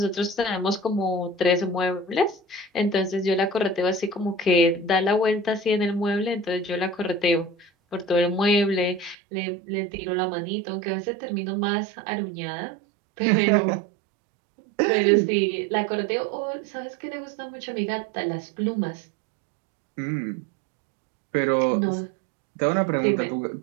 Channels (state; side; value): drops out; left; at 9.2 s